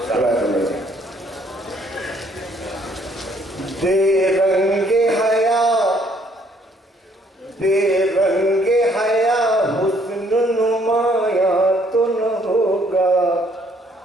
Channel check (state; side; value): normal; both; correlation 0.65